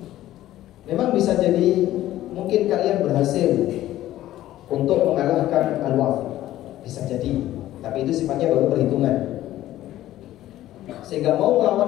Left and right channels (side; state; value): right; quieter; 14.1 dB